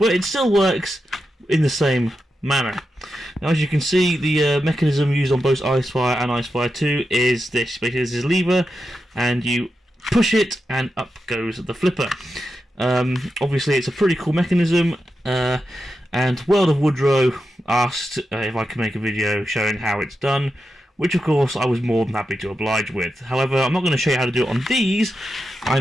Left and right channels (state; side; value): normal; both; correlation 0.89